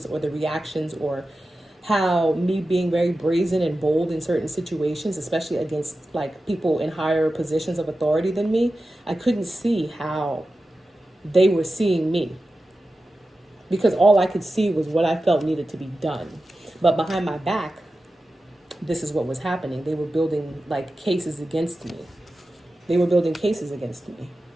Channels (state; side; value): normal; both; correlation 0.93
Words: or the reactions or how me being very brazen and bold in certain situations, especially against like people in higher positions of authority than me, I couldn't see how they were seeing me because all I could see was what I felt needed to be done. But behind my back, this is what was happening. They were building like cases against me. They were building cases against me.